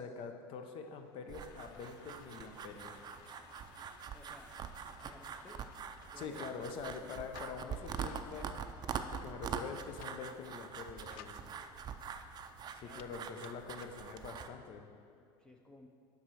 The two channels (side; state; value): both; normal; correlation 0.23